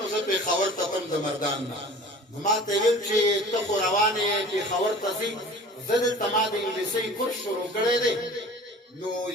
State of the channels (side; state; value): both; normal; correlation 0.42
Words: زه پېښور ته تم د مردان نه نو ما ته یې ویل چې ته خو روان یې پېښور ته ځې زه دلته ما د انګلیسۍ کورس شروع کړی دی نو